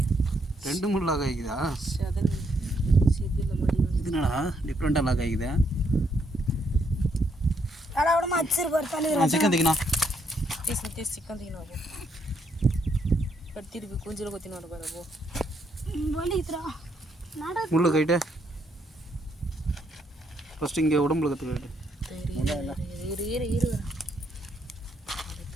ரெண்டு மூணு லாக் ஆகிக்குதா? இது என்னடா டிஃப்ரெண்ட்டாக லாக் ஆகிக்குதா? சிக்கன் திக்கணா சிக்கன் திக்கணும் திருப்பி கொஞ்சம் கொத்தினோட பாருப்போ முள்ளு கைட்டு ஃபஸ்ட்டு இங்கே உடம்புல கற்றுக்கிட்டு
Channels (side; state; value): both; normal; correlation 0.74